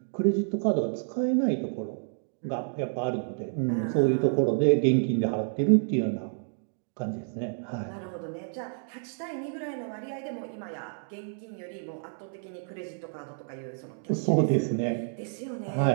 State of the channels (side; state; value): left; silent; digital silence